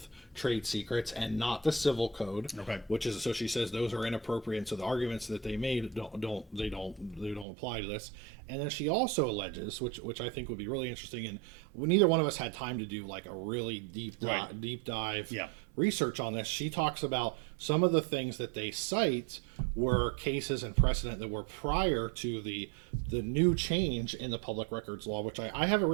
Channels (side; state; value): left; drops out; at 7.5 s